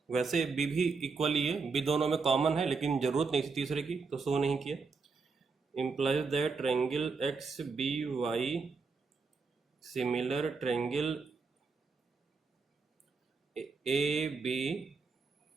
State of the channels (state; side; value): quieter; left; 4.6 dB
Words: वैसे बी भी इक्वल ही है, बी दोनों में कॉमन है, लेकिन जरूरत नहीं थी तीसरे की तो शो नहीं किया। implies that triangle X B Y similar triangle A B